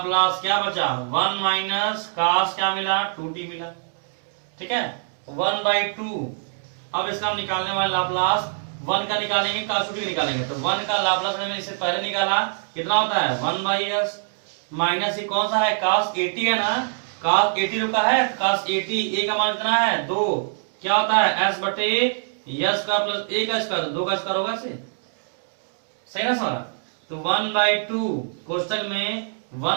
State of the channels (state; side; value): silent; left; digital silence